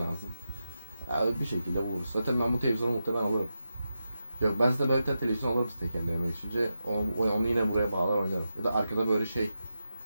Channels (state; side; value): inverted; both; correlation -0.89